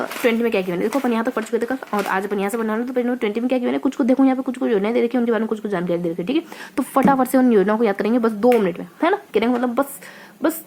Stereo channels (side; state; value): both; identical; correlation 1.00